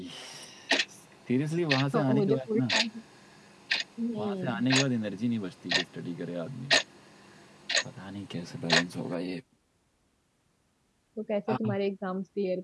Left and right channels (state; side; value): identical; both; correlation 1.00